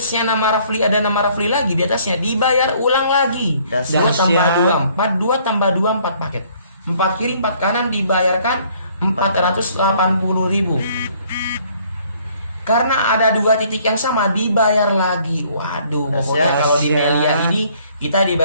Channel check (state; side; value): inverted; both; correlation -0.61